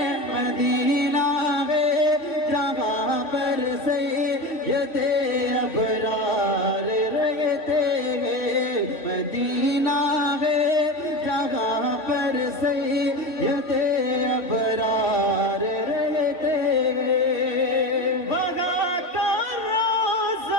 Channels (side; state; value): right; late; 3.1 ms